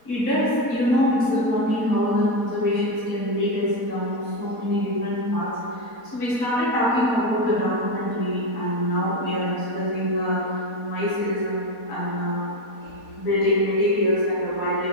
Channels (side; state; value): right; late; 4.1 ms